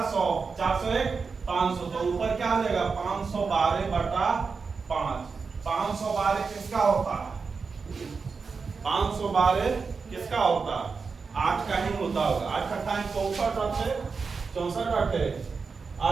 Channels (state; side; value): quieter; left; 4.9 dB